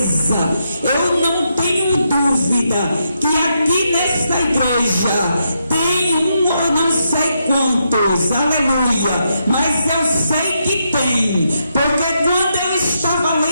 eu não tenho dúvida que aqui nesta igreja tem eu não sei quantos, aleluia, mas eu sei que tem, porque quando eu estava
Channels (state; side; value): inverted; both; correlation -0.81